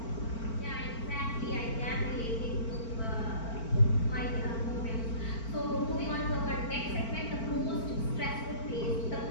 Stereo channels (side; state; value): right; late; 4.4 ms